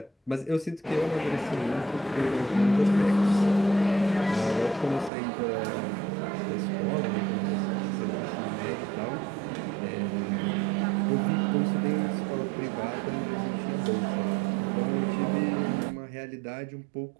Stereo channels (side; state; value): left; drops out; at 5.1 s